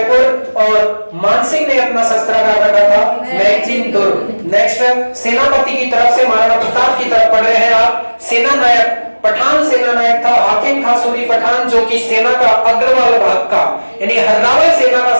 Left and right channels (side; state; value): both; inverted; correlation -1.00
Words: और मानसिंह ने अपना शस्त्रागार रखा था मैगजीन दुर्ग। नेक्स्ट सेनापति की तरफ से महाराणा प्रताप की तरफ पढ़ रहे हैं आप। सेना नायक पठान सेना नायक था हाकिम खां सूरी पठान, जो कि सेना का अग्रवाल भाग का यानी हर्रावल सेना का